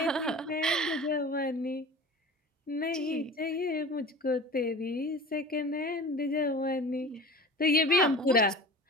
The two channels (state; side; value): normal; both; correlation 0.38